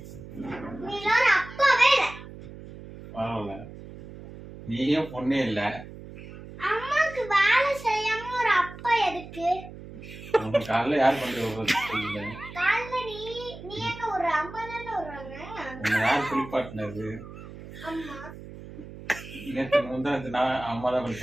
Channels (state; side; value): noise; right; hum, 14 dB below the sound